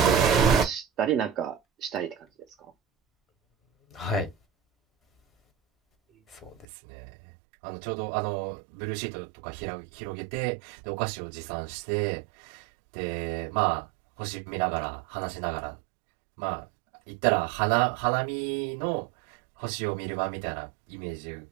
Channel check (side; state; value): left; drops out; at 6.7 s